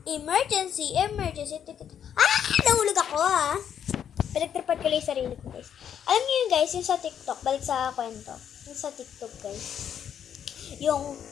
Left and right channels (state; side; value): quieter; right; 8.9 dB